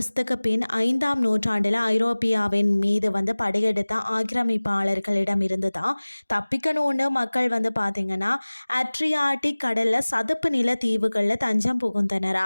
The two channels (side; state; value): both; inverted; correlation -1.00